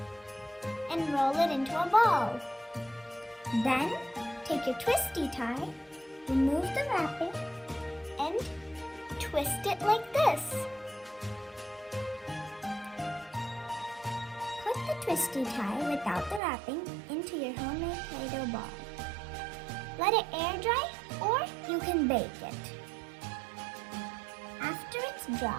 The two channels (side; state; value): left; drops out; at 16.4 s